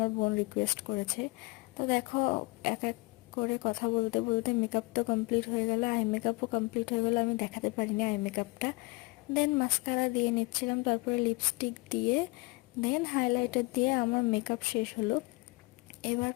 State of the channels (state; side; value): quieter; right; 25.8 dB